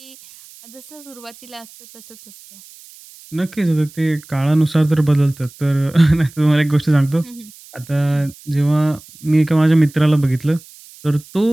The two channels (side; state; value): right; noise; hiss, 22 dB below the sound